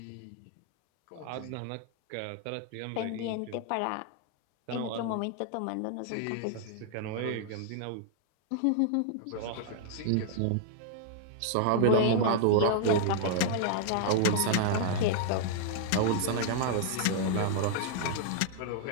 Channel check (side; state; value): both; different; correlation -0.01